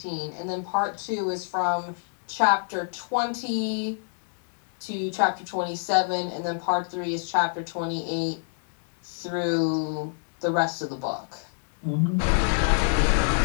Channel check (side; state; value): right; silent; digital silence